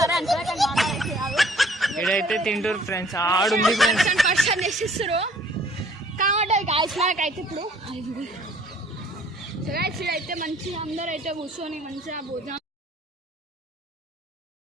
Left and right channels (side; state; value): both; normal; correlation 0.56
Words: ఇడైతే తింటారు ఫ్రెండ్స్, ఆడుంది ఫ్రెండ్స్. పర్సన్ చేసిస్తారు కాబట్టి గాయస్ మనకైతే ఇప్పుడు సో గాయస్ ఇదైతే మంచిగా అందరూ అయితే కూర్చొని మంచిగా భోజనం